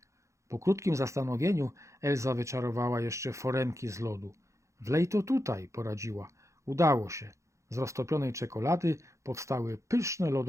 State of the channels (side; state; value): left; late; 0.15 ms